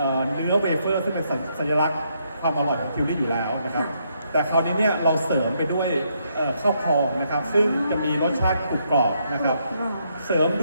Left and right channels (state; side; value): inverted; both; correlation -0.76